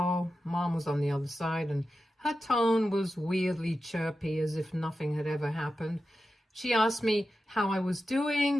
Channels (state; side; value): normal; both; correlation 0.91